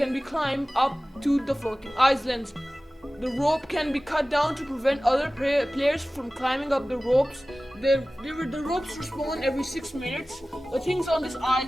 climbed up to the floating islands. The rope can be cut down to prevent other players from climbing up the ropes. The ropes respawn every 6 minutes. The things on these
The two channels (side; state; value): both; normal; correlation 0.97